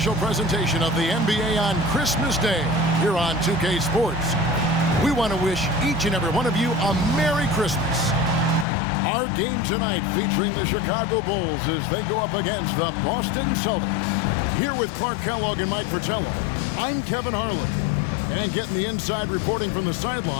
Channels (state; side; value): drops out; right; at 8.7 s